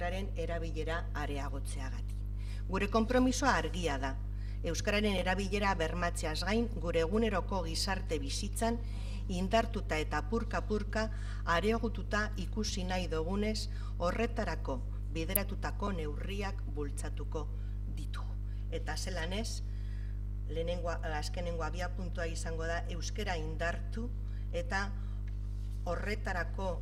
erabilera areagotzeagatik. Gure konpromisoa argia da, euskararen erabilera bermatzeaz gain, gure eguneroko gizarte bizitzan indartuta eta purka-purka areagotuta ikusi nahi dugunez, horretarako bideratutako neurriak bultzatuko ditugu. Eta zelan ez, azkenengo abiapuntua izango da euskara indartu eta horretarako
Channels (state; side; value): identical; both; correlation 1.00